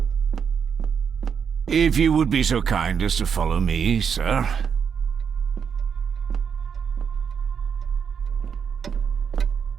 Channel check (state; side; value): quieter; left; 6.9 dB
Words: If you would be so kind as to follow me, sir.